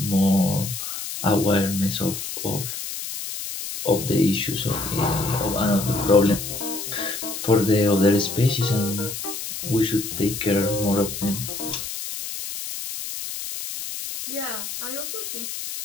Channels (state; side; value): noise; left; hiss, 7 dB below the sound